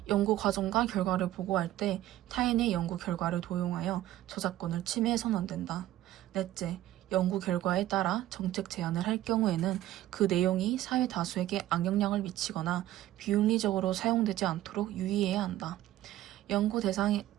연구 과정과 결과를 보고할 때 타인의 연구 결과를 도용하여 저작권을 침해해서는 안 된다. 넷째, 연구 결과에 따라 정책 제안을 할 경우에는 그 내용이 사회 다수에게 악영향을 미치거나 비윤리적으로 사용되지 않도록 유의해야 한다. 연구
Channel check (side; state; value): left; quieter; 14.1 dB